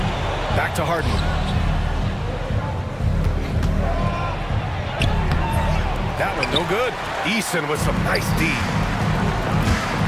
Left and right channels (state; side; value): identical; both; correlation 1.00